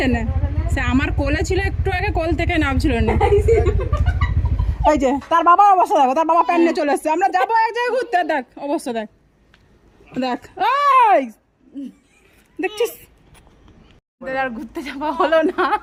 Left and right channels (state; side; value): identical; both; correlation 1.00